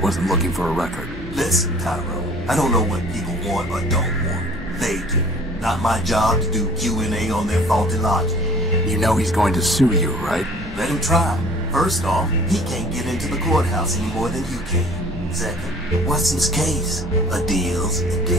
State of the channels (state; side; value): normal; both; correlation 0.50